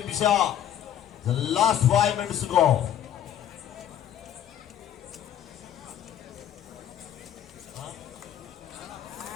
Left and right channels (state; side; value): quieter; right; 10.4 dB